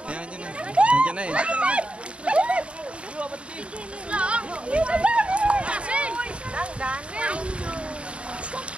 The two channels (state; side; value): late; left; 0.059 ms